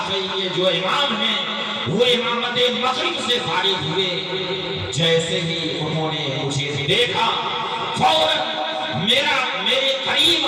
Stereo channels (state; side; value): identical; both; correlation 1.00